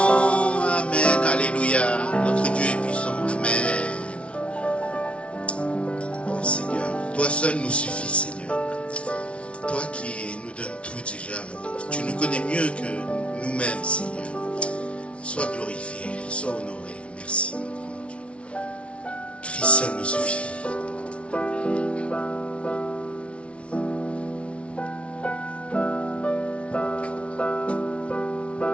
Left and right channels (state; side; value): late; right; 0.061 ms